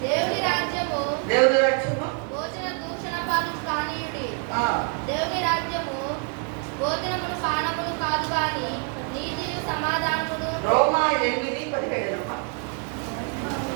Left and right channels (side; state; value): left; quieter; 39.0 dB